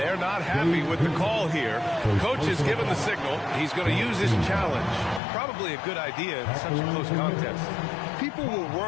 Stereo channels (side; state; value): right; drops out; at 5.2 s